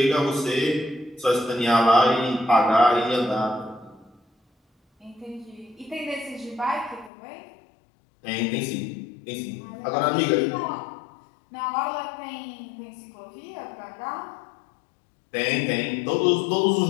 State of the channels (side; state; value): right; drops out; at 7.1 s